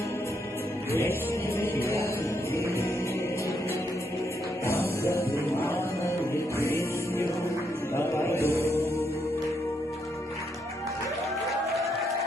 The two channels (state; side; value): normal; both; correlation 0.78